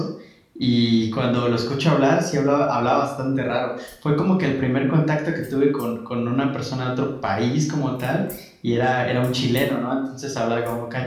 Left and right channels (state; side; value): identical; both; correlation 1.00